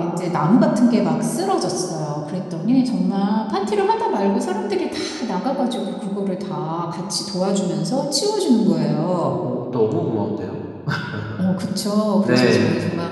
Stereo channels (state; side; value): identical; both; correlation 1.00